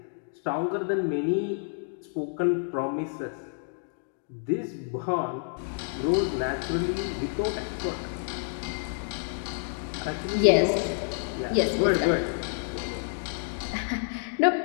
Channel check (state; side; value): silent; right; digital silence